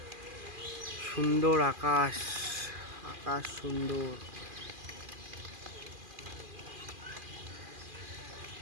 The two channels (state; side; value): late; left; 2.4 ms